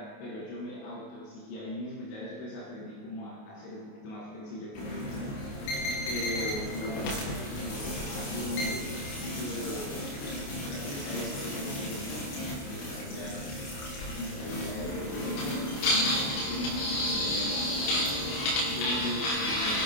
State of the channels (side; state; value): right; late; 28 ms